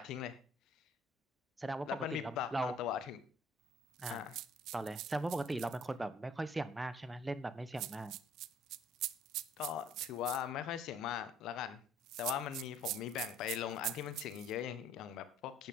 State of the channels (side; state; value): both; normal; correlation 0.58